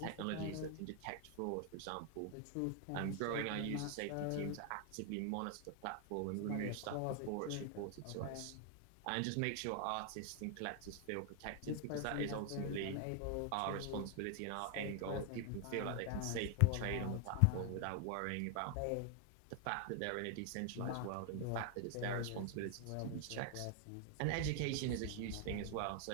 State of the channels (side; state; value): both; different; correlation 0.00